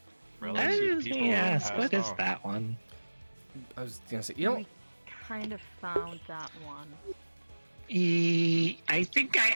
Relative people Yes, passed what is on. that one? I was gonna say, you know, We kind of found that one. I think I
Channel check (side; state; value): both; inverted; correlation -1.00